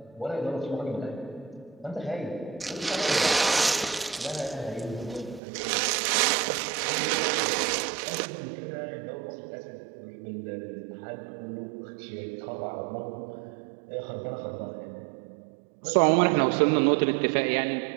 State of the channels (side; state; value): left; drops out; at 5.4 s